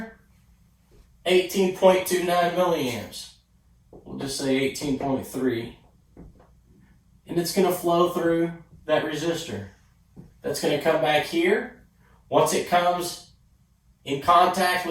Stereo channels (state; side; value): identical; both; correlation 1.00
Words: 18.29 milliamps. We'll just say 18.3. And it's going to flow through that resistor. That's going to come back here. Once it comes in contact